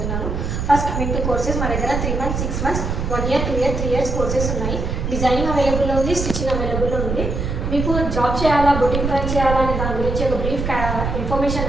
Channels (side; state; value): right; noise; rumble, 2 dB below the sound